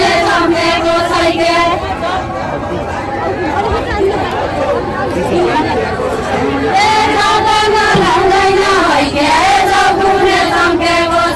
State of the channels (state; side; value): identical; both; correlation 1.00